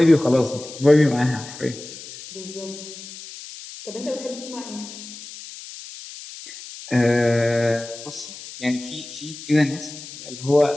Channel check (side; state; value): left; noise; hiss, 14 dB below the sound